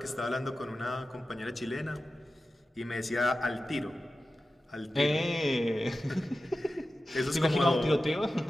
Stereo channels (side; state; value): both; normal; correlation 0.94